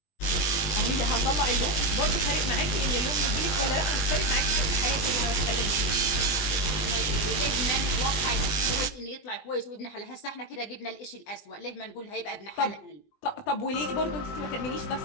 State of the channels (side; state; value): right; late; 20 ms